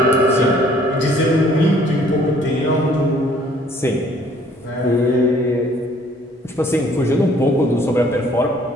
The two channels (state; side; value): normal; both; correlation 0.59